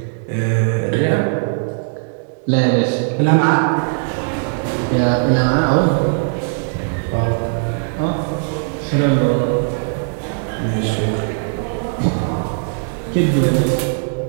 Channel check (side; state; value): left; silent; 67 dB below the other